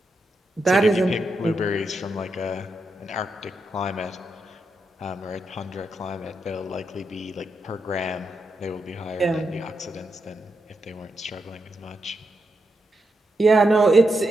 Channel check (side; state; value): both; normal; correlation 0.84